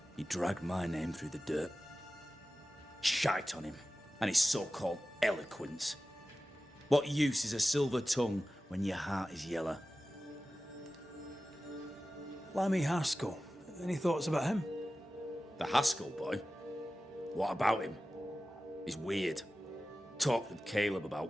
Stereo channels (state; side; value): normal; both; correlation 0.95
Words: He dragged my name through the dirt. Shite on him, and his so-called eloquence. What use is a silver tongue when your heart is yellow? Lammy Haskell. Any thoughts about him? The Haskell boy? What about him? He's weird. Talked with Caleb